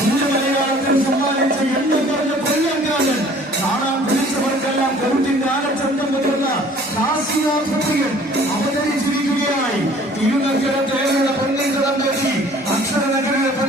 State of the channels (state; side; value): normal; both; correlation 0.52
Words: മലയാളത്തിൽ സമ്മാനിച്ച എണ്ണം പറഞ്ഞ കൊല്ലംകാരൻ കാണാൻ വിളിച്ചവർക്കെല്ലാം കരുത്തിന്റെ ആനച്ചന്തം മുതിർന്ന കാശിനാഥപ്രിയൻ അവതരിച്ചിരിക്കുകയായി. തിരുനക്കര തേവരുടെ പൊന്നിൻകടം കെട്ടി അക്ഷരനഗരിലെ